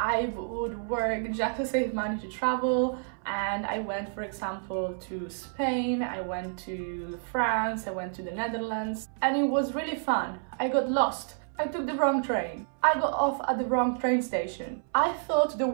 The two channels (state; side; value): silent; left; 58 dB below the other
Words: would work just to save money to travel. And I went, for example, to Spain, I went to France, I went to the Netherlands. And it was really fun. I got lost. I took the wrong train. I got off at the wrong train station. I thought the